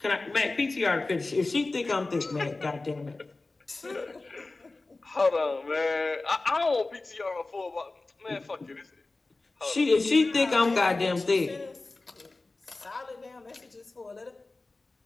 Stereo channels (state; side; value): quieter; right; 3.3 dB